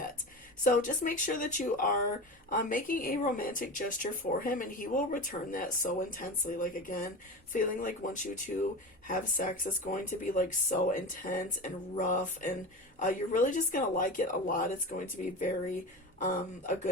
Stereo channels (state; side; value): normal; both; correlation 0.27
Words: So just make sure that you are making a romantic gesture for him, and he will return that so intensely. Like, again, feeling like once you two have sex, it's going to be like so intense and rough, and you're really just going to like it a lot. It's going to be very a